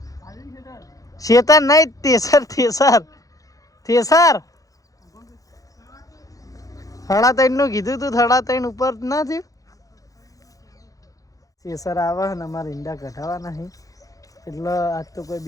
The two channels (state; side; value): late; right; 0.17 ms